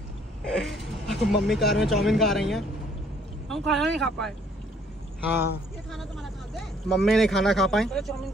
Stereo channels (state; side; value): normal; both; correlation 0.62